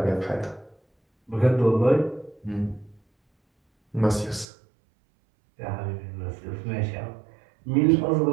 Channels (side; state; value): left; drops out; at 4.5 s